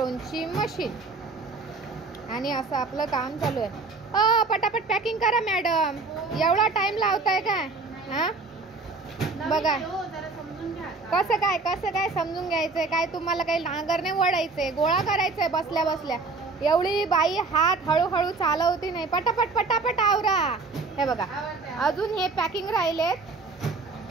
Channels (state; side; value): quieter; left; 4.0 dB